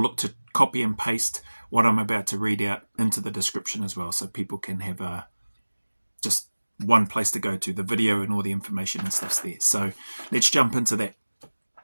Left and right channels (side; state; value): both; inverted; correlation -1.00